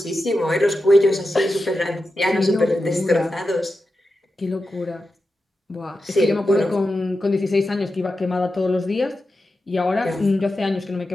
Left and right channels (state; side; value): normal; both; correlation 0.90